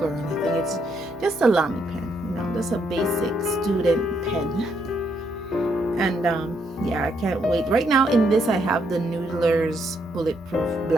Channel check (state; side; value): normal; both; correlation 0.75